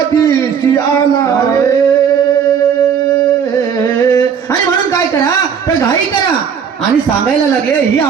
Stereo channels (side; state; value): left; quieter; 7.3 dB